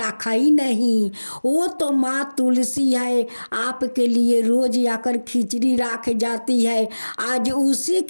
ही नहीं। वो तो माँ तुलसी है, आपके लिए रोज आकर खिचड़ी रख जाती है। आज उसी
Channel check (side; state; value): both; inverted; correlation -1.00